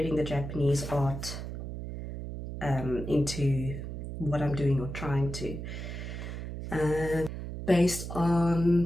the Japanese art into what I'm doing or trying to. Based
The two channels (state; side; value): noise; right; hum, 7 dB below the sound